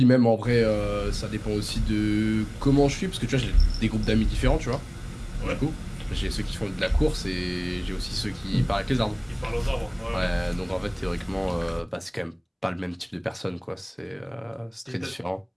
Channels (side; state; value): both; identical; correlation 1.00